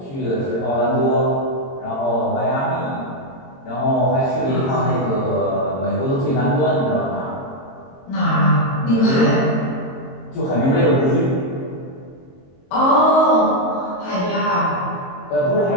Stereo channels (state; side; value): late; right; 22 ms